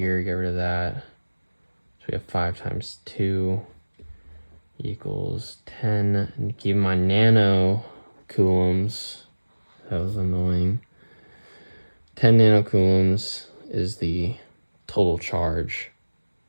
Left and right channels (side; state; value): both; inverted; correlation -1.00